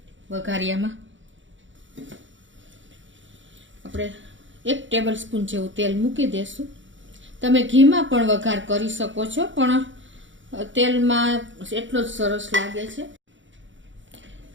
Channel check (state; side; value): late; left; 0.55 ms